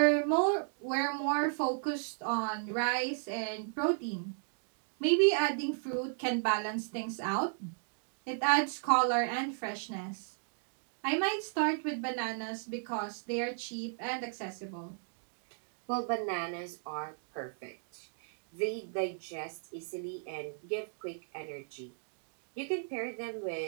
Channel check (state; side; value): silent; left; digital silence